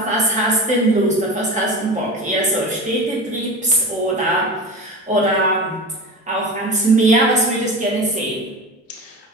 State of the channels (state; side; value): normal; both; correlation 0.30